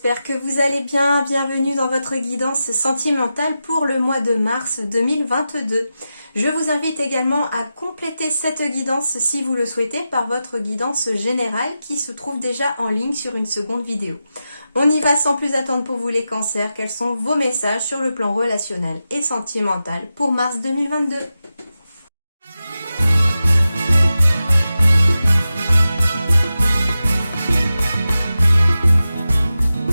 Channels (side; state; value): both; inverted; correlation -0.91